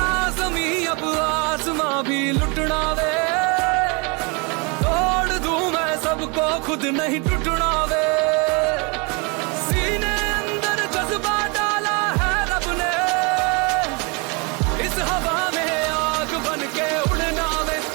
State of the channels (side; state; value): left; quieter; 31.0 dB